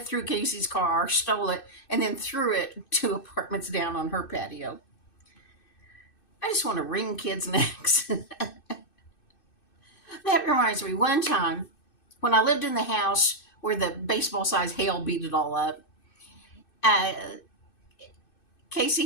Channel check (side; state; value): right; late; 2.6 ms